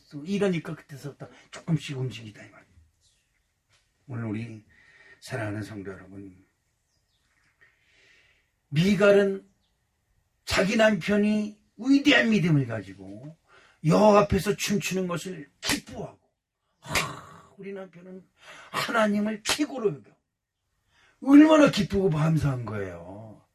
이러니까 그때서부터 조금씩 움직이다 이 말이에요. 오늘 우리 사랑하는 성도 여러분, 미갈은 자기 남편이 위대한 믿음을 가지고 여호와 앞에서 춤추는 것을 기뻐하고 우리 남편은 하나님을 최고로 여겨. 얼마나 기쁘고 감사한 거예요.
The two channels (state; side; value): identical; both; correlation 1.00